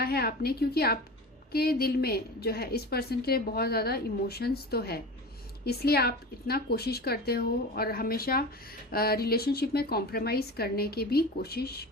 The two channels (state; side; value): normal; both; correlation 0.31